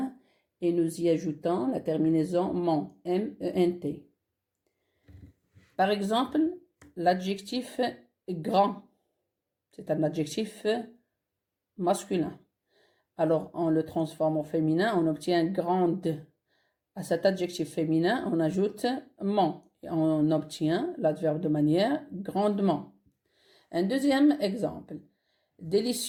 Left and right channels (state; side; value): identical; both; correlation 1.00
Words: et nous y ajoutons la terminaison ment, M-E-N-T. Par exemple, l'adjectif grand, c'est un adjectif masculin. Alors, on le transforme au féminin, on obtient grande. À cet adjectif féminin, on ajoute ment et on obtient l'adverbe de manière grandement. Un deuxième exemple.